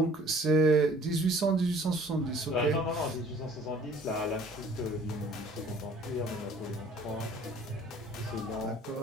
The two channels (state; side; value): normal; both; correlation 0.53